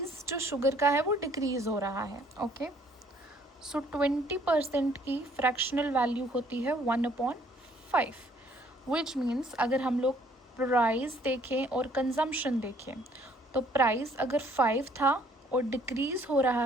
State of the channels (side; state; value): both; normal; correlation 0.62